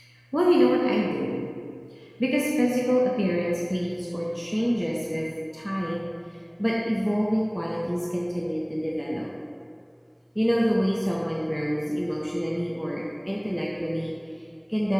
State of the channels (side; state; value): both; identical; correlation 1.00